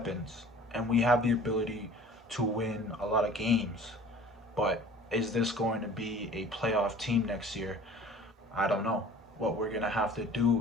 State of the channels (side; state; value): both; normal; correlation 0.47